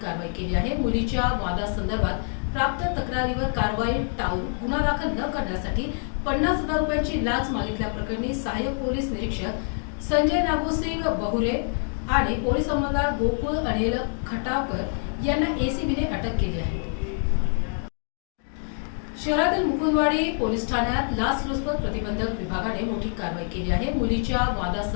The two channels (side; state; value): right; silent; 56 dB below the other